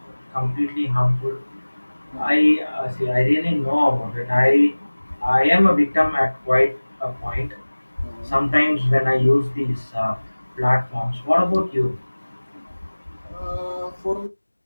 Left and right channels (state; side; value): inverted; both; correlation -1.00